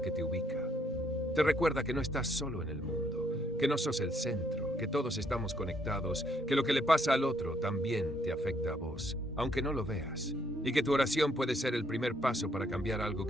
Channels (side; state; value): both; normal; correlation 0.70